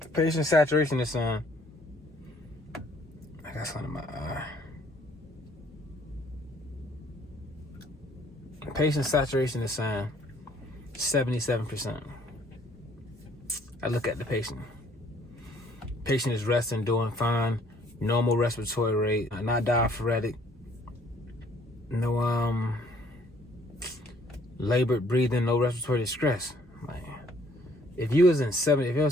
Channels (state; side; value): normal; both; correlation 0.62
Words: The patient saturation is on. I got something in my eye. The patient saturation is saying 77%. I look at the patient. Patient is resting, doing fine. Normal respiratory rate, not diaphoretic. No labored breathing, no respiratory distress. Like, if your